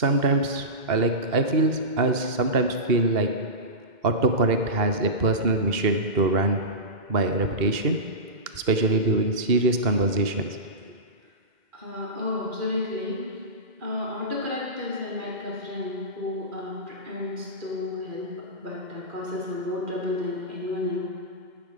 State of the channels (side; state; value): left; late; 2.1 ms